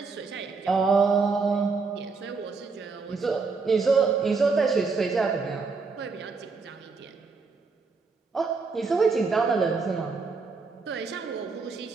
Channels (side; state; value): left; quieter; 4.5 dB